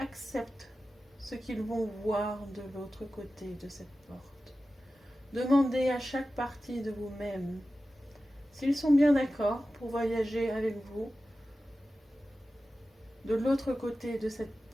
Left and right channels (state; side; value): normal; both; correlation 0.94